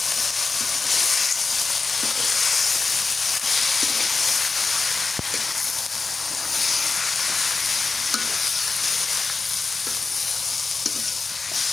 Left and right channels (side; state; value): right; quieter; 4.3 dB